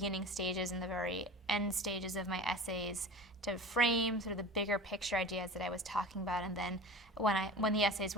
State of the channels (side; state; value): both; normal; correlation 0.36